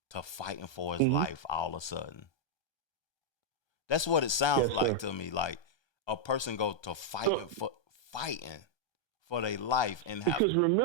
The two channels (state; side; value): late; right; 1.2 ms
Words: to fighting for his life all of a sudden. That's what it sounds like to me. Like a person go to fighting for their life and because